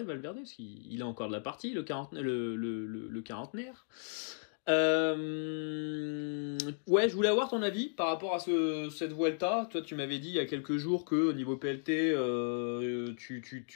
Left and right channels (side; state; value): right; silent; digital silence